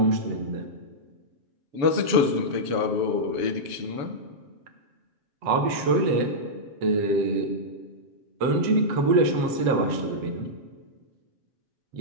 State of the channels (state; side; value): late; left; 7.5 ms